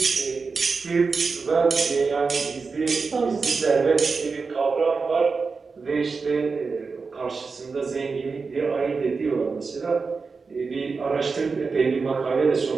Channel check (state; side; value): quieter; left; 4.6 dB